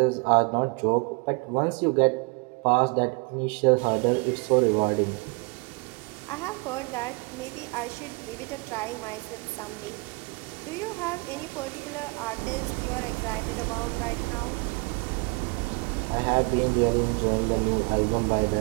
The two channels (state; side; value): quieter; left; 30.7 dB